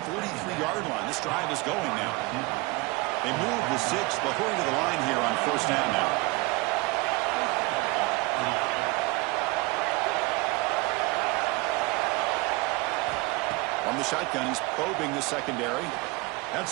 line. This drive is going now. They move the 6. They'll hurry to the line here on 1st down now. On the shotgun, he's probing the secondary.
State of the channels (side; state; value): left; quieter; 24.3 dB